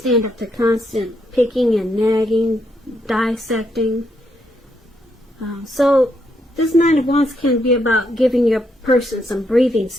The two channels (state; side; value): normal; both; correlation 0.77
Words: up to constant picking and nagging, dissecting. So this Nine of Wands can be about giving your person some breathing